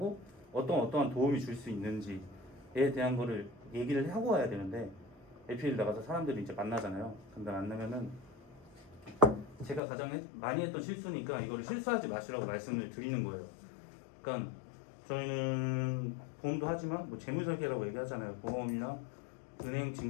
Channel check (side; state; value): right; drops out; at 9.8 s